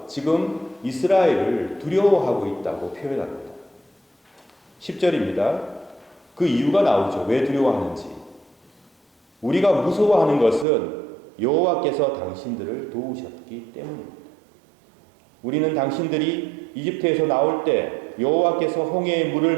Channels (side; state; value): left; drops out; at 10.7 s